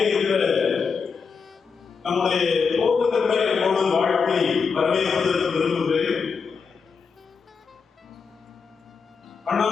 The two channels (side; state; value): right; quieter; 5.5 dB